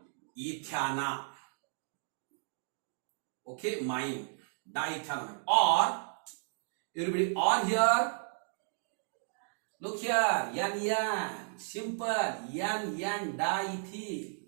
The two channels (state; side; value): silent; left; digital silence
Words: Okay, mine. Diethanamine. Or, everybody, or here. Look here, N. Simple. N diethyl.